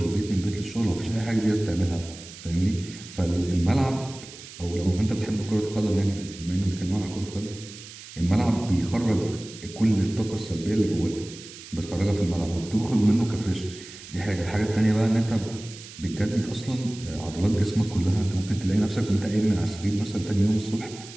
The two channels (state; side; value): noise; right; hiss, 16 dB below the sound